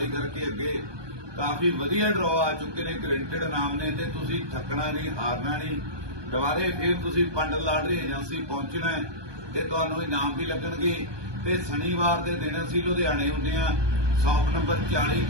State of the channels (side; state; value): left; late; 1.2 ms